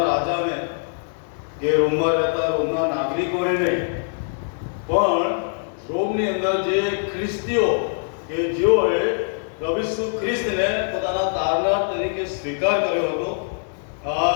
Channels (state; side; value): silent; right; 64 dB below the other